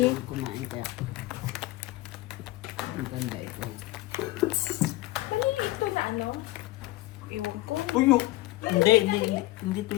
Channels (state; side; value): quieter; right; 18.5 dB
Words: Kumain kaya. Ang ganda ito. Kanina ito na ano? Iwan ko. Tuyo. Hindi to